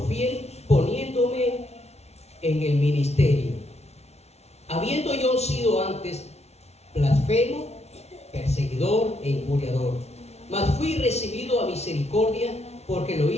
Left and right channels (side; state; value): right; late; 0.31 ms